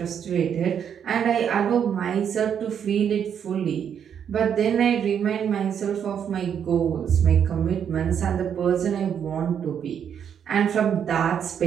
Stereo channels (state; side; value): quieter; left; 8.3 dB